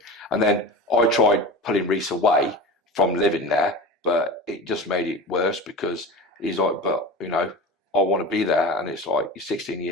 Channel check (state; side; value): normal; both; correlation 0.31